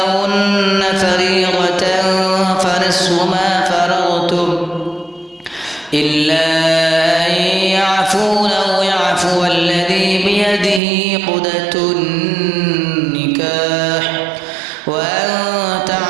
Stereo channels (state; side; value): drops out; left; at 10.8 s